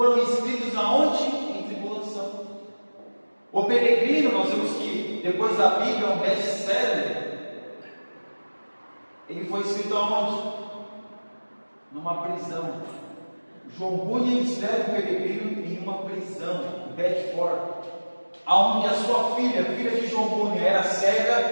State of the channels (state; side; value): inverted; both; correlation -1.00